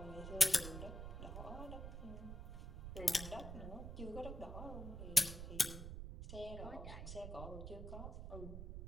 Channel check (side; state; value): right; noise; rumble, 7 dB below the sound